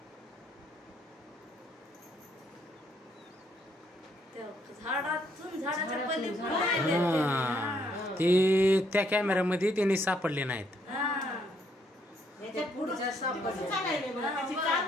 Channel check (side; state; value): both; normal; correlation 0.71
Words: ते त्या कॅमेऱ्यामध्ये त्यांनी सापडले नाहीत.